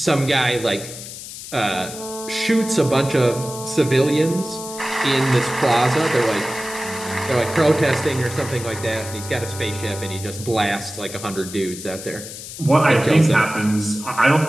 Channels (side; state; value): left; noise; hiss, 12 dB below the sound